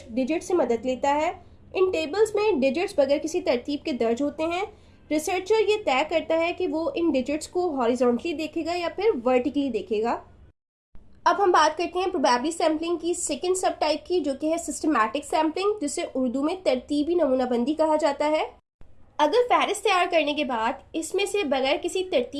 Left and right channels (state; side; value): identical; both; correlation 1.00